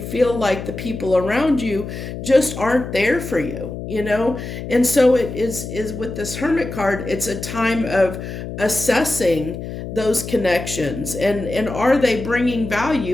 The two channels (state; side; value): noise; left; hum, 8 dB below the sound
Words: like the people around you just aren't there for you, and so it is with this Hermit card, it's a time of assessing those connections and are they bringing